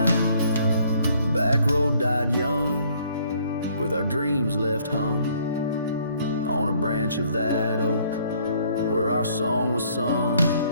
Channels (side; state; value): both; inverted; correlation -0.63